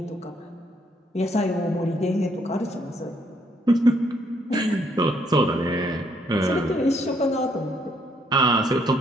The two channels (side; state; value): both; normal; correlation 0.70